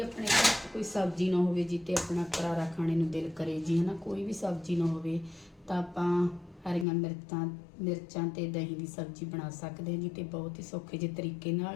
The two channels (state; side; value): drops out; right; at 6.9 s